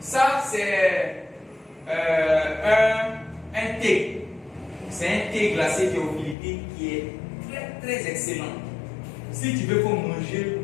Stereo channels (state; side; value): drops out; right; at 6.4 s